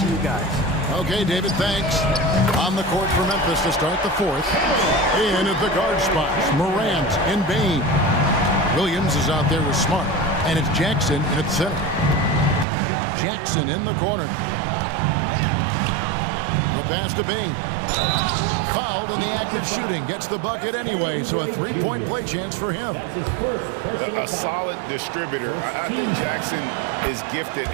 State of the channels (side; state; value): left; drops out; at 12.7 s